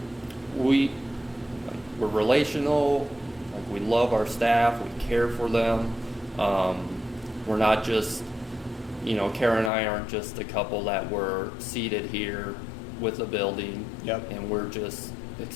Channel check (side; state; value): right; drops out; at 9.7 s